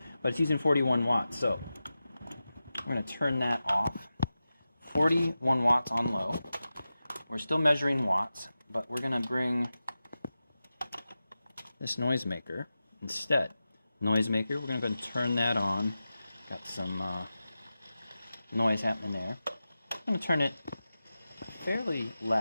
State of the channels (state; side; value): inverted; both; correlation -0.93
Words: but it's using 41 watts. So we're going to turn that off. 41 watts on low. We're still measuring watts, but we're going to bring this noisemaker instead. Noisemaker, we're going to go and turn that on. Got some noise happening there. I'm going to turn it fairly